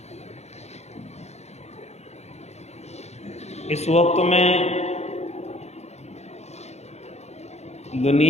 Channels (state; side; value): late; right; 0.32 ms